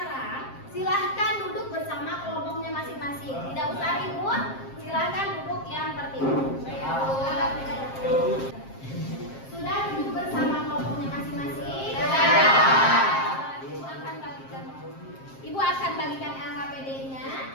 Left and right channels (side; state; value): right; late; 7.5 ms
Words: silahkan duduk bersama kelompoknya masing-masing. Tidak usah ribut. Silahkan duduk yang tertib. Sudah duduk bersama kelompoknya masing-masing. Ibu akan bagikan